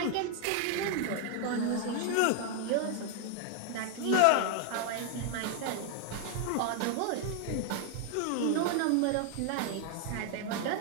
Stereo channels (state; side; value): different; both; correlation 0.00